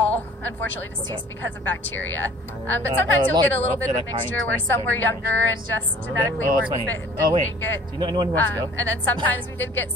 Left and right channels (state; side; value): normal; both; correlation 0.51